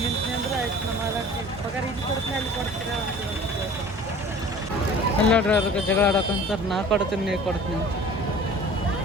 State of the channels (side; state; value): both; normal; correlation 0.45